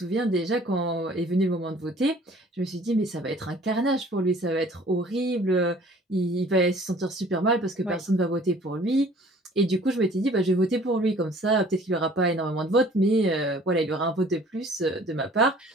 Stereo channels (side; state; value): both; normal; correlation 0.52